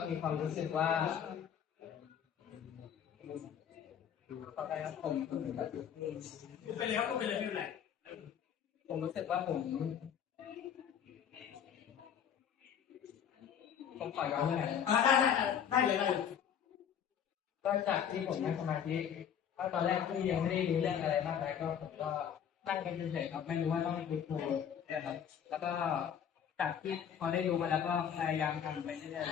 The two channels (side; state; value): right; quieter; 8.6 dB